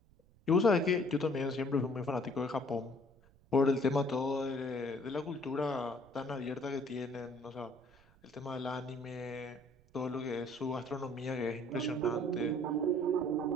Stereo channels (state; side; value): noise; right; rumble, 28 dB below the sound